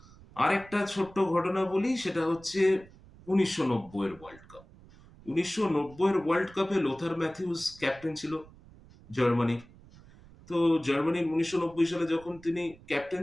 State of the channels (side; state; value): right; noise; rumble, 23 dB below the sound